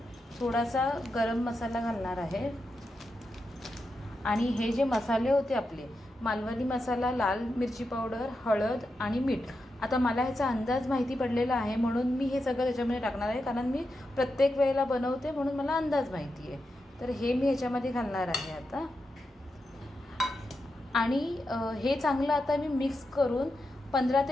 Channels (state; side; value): normal; both; correlation 0.87